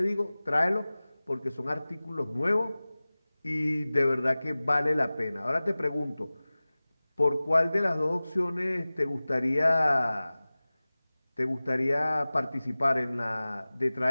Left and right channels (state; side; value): inverted; both; correlation -0.98